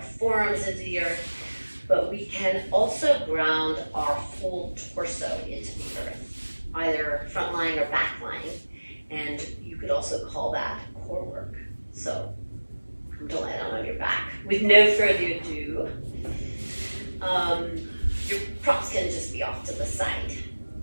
forearms into the earth, but we can also ground our whole torso into the earth, either front lying or back lying, and you could also call that core work. So come to lie down on your back. With no further ado, your props can just be off to the side.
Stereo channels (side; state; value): both; inverted; correlation -1.00